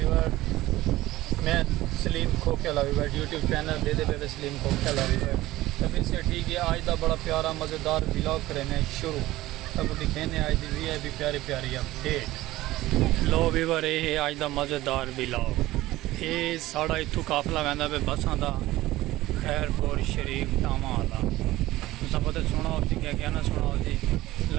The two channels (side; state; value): left; quieter; 17.0 dB